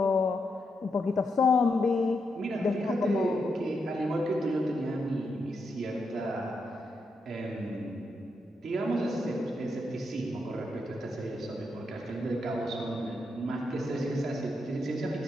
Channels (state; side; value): normal; both; correlation 0.83